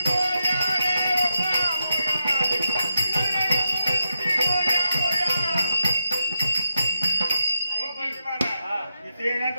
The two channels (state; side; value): inverted; both; correlation -0.86